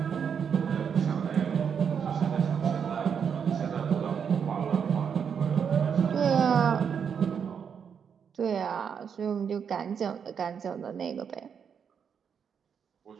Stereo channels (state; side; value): quieter; left; 7.2 dB